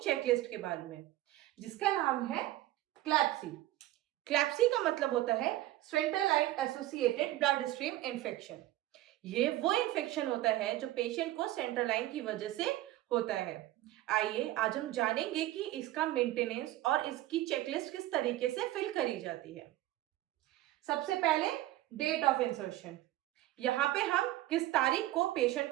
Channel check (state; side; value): quieter; left; 15.5 dB